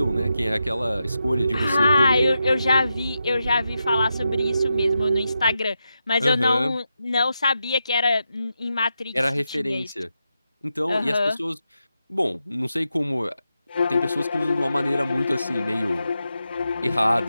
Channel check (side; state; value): both; inverted; correlation -0.87